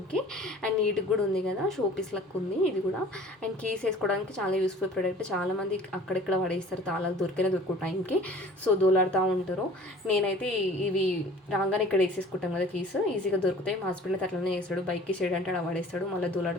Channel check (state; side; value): normal; both; correlation 0.47